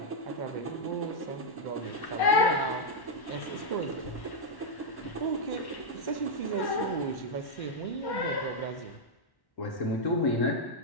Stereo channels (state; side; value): late; right; 1.1 ms